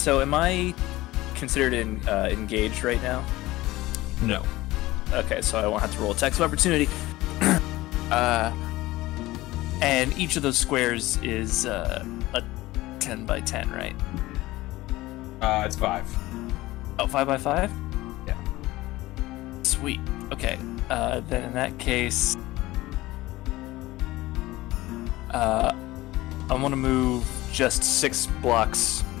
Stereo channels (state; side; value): quieter; right; 18.1 dB